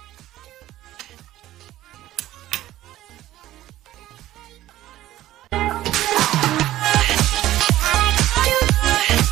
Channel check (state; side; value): quieter; left; 14.5 dB